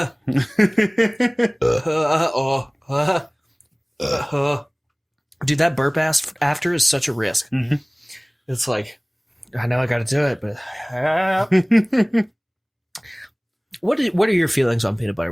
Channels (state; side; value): identical; both; correlation 1.00